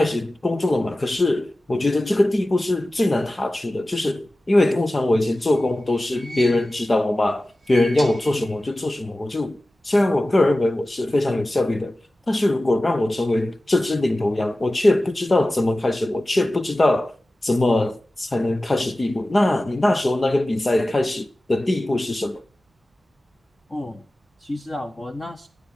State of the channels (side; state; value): both; normal; correlation 0.96